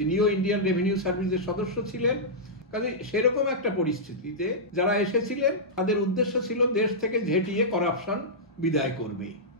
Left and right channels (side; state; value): both; normal; correlation -0.12